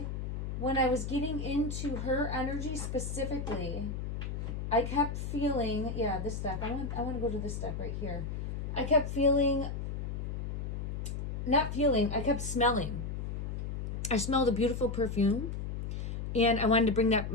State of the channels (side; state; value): left; noise; hum, 4 dB below the sound